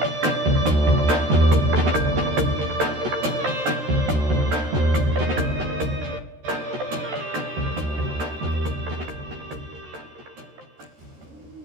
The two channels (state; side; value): late; left; 13 ms